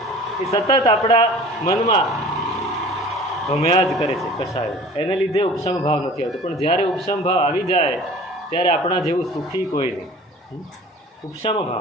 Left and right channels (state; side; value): normal; both; correlation 0.44